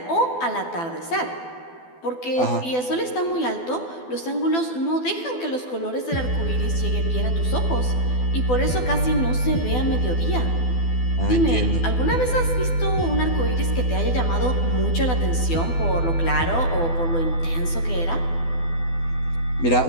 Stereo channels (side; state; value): right; late; 12 ms